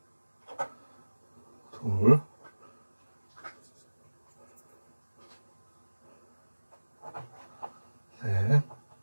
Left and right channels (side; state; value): both; inverted; correlation -1.00